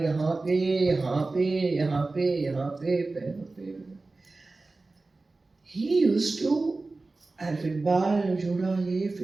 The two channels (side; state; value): left; quieter; 3.4 dB